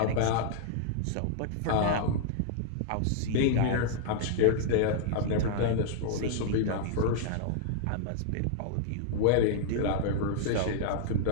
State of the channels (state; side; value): different; both; correlation -0.01